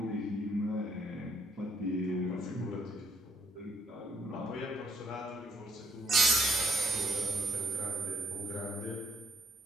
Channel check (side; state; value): both; normal; correlation 0.67